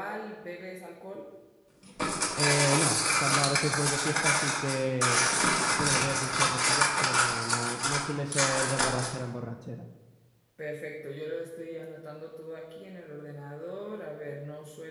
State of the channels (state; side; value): identical; both; correlation 1.00